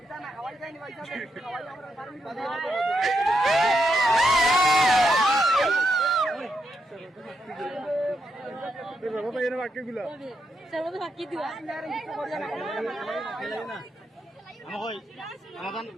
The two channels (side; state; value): both; normal; correlation 0.82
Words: এটা না খাওয়াই যায় না পয়সা খাওয়াই আমরা পারমি বাবা ভাই এর বাক্যগুলো চলো বাকি দিও আমাদের